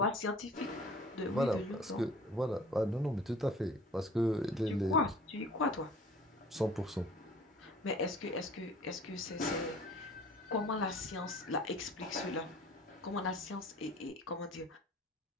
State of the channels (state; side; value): normal; both; correlation 0.48